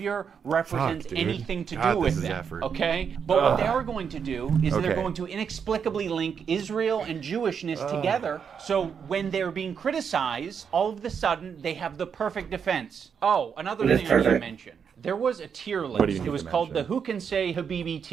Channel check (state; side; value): quieter; left; 6.9 dB